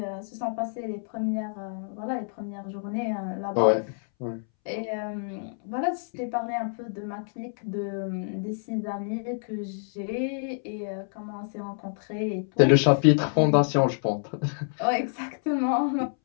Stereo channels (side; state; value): right; silent; 60 dB below the other